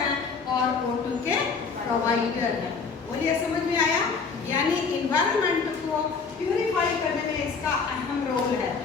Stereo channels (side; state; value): right; quieter; 5.2 dB